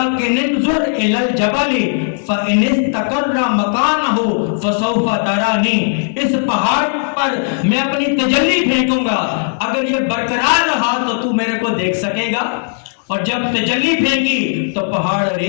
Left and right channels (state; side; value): silent; right; digital silence